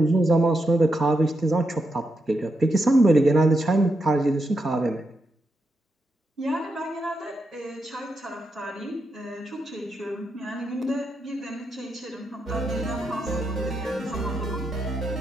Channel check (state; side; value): normal; both; correlation 0.84